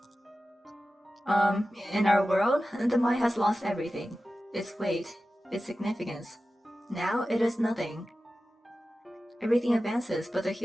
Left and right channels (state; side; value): normal; both; correlation 0.94